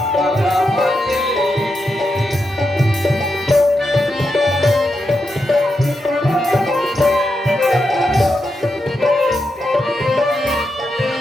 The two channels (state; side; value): normal; both; correlation 0.86